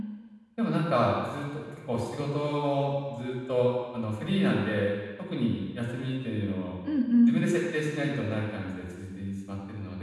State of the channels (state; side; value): identical; both; correlation 1.00